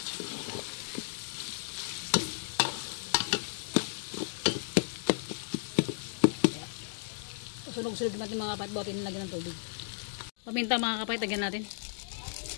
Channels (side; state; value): right; silent; digital silence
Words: Sunog-sunog natin mga kapait. Bawatin nilagyan ng tubig. Paminta mga kapait. Lagyan natin.